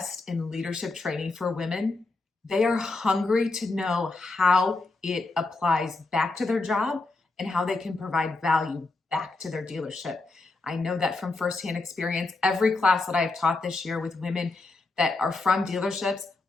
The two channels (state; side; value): quieter; right; 3.4 dB